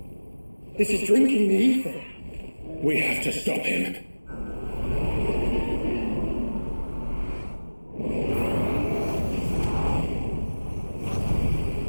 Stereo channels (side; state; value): both; inverted; correlation -1.00